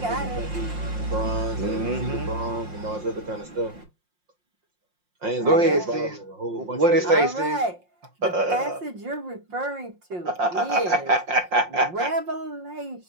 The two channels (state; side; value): late; left; 5.6 ms